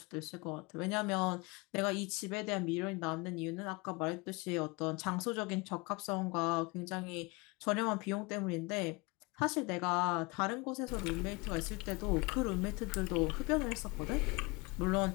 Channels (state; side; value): quieter; right; 26.5 dB